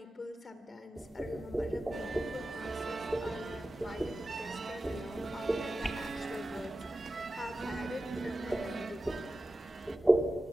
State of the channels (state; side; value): normal; both; correlation 0.93